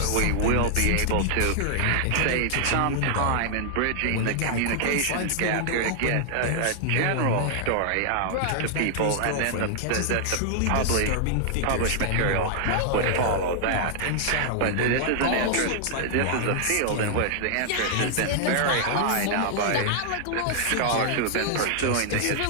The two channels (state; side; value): different; both; correlation -0.01